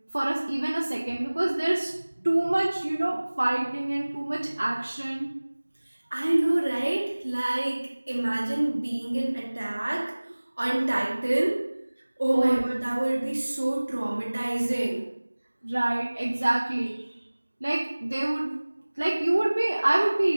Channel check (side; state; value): both; inverted; correlation -1.00